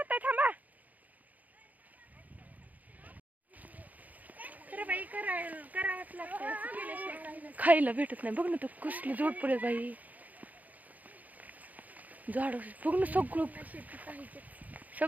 थांबा. खायला भेटत नाही बघ ना, तो कसली जोड पडेल बाई. झाड बघ ना,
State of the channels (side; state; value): left; late; 0.078 ms